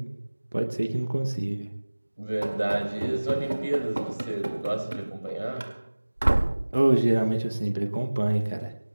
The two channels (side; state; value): both; inverted; correlation -1.00